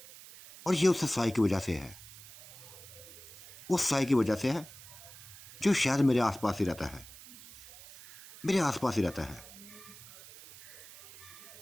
और ये उस साई की वजह से है, उस साई की वजह से है जो शायद मेरे आसपास ही रहता है, मेरे आसपास ही रहता है।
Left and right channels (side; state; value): right; noise; hiss, 18 dB below the sound